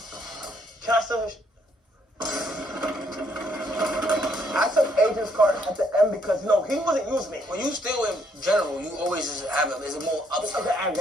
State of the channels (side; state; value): both; normal; correlation 0.70